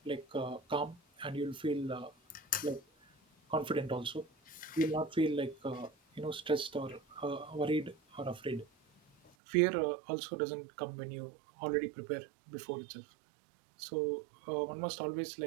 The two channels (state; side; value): drops out; left; at 9.3 s